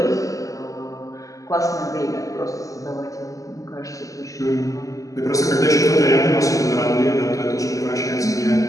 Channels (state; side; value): late; right; 0.16 ms